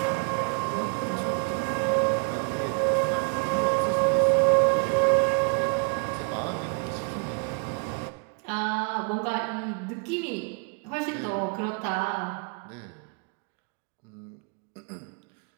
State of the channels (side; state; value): left; quieter; 39.1 dB